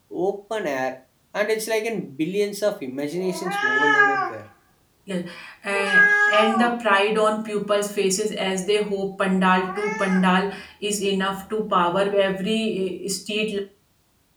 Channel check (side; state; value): both; identical; correlation 1.00